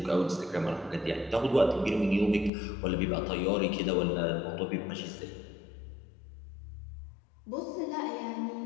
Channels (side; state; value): right; drops out; at 2.5 s